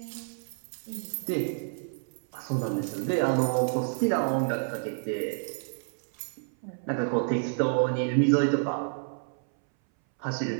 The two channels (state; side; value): silent; left; 58 dB below the other